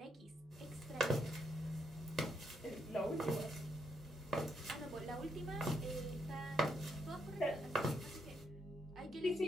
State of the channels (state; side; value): normal; both; correlation 0.77